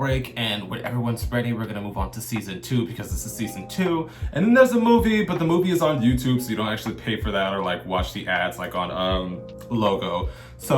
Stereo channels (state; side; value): identical; both; correlation 1.00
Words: and when everyone's ready, we're going to move on to season 2 because this is season 2. And then there's a movie, but the movie is on YouTube, so you don't actually pay for that or like watch the ads like on Logo.